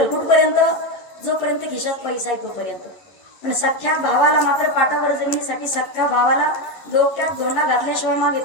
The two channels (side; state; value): right; late; 11 ms